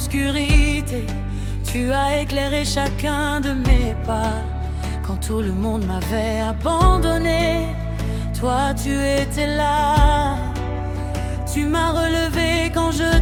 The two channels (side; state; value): both; identical; correlation 1.00